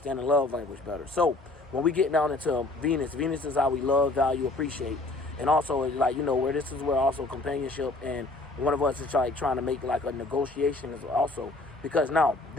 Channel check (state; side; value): quieter; right; 3.1 dB